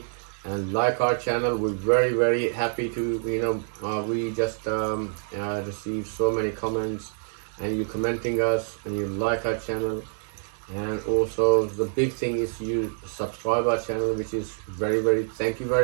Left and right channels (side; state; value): left; silent; 59 dB below the other